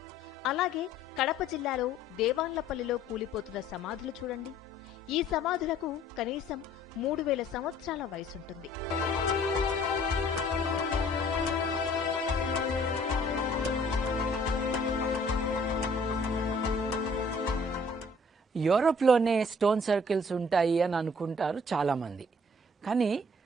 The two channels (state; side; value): normal; both; correlation 0.57